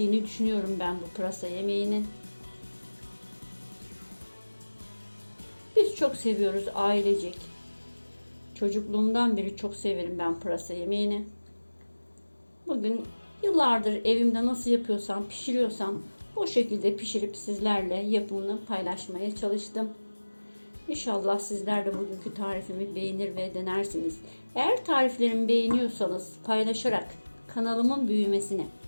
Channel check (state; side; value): inverted; both; correlation -1.00